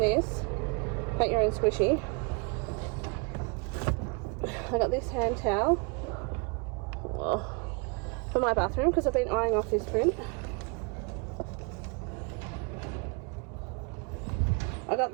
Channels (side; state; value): left; quieter; 33.1 dB